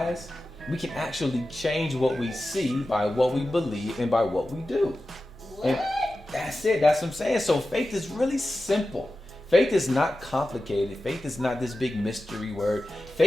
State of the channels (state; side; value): normal; both; correlation 0.93